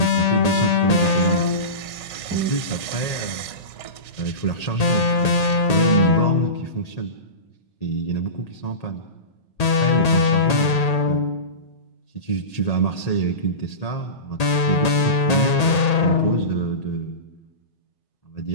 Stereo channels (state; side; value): late; right; 1.8 ms